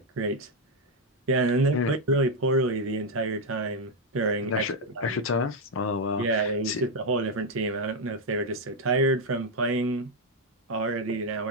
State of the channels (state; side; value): normal; both; correlation 0.02